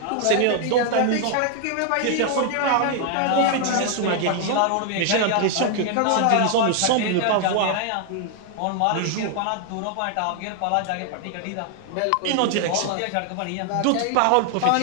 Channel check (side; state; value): both; different; correlation 0.00